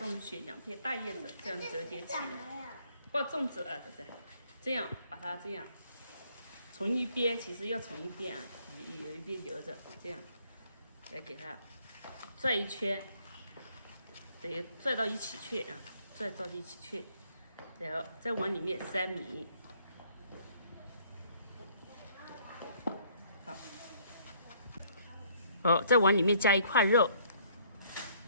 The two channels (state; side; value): inverted; both; correlation -0.63